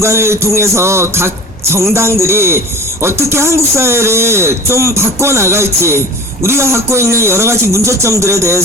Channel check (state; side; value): normal; both; correlation 0.36